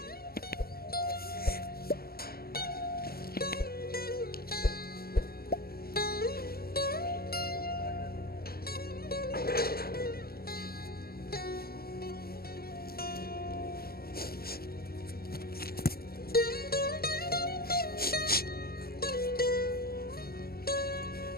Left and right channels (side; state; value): right; late; 0.44 ms